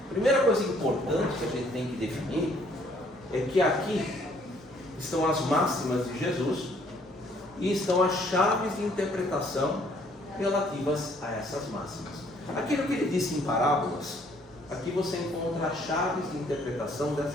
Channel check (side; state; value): both; normal; correlation 0.63